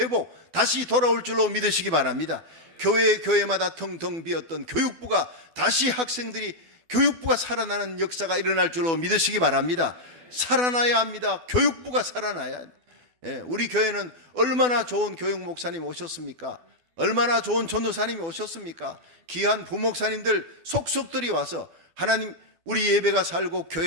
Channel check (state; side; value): late; left; 12 ms